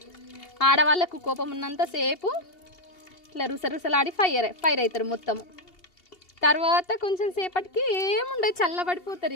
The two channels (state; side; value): late; right; 2.7 ms